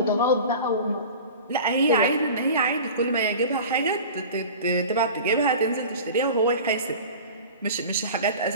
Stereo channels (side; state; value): both; inverted; correlation -0.37